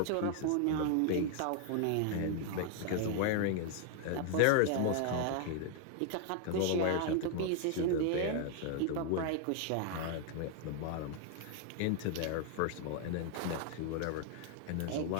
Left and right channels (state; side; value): different; both; correlation 0.00